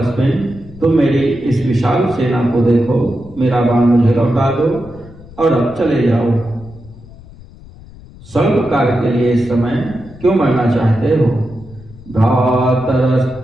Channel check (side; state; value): left; noise; rumble, 19 dB below the sound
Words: तुम मेरी इस विशाल सेना को देखो, मेरा बाण मुझे लौटा दो और अब चले जाओ। स्वल्प कार्य के लिए इस समय क्यों मरना चाहते हो?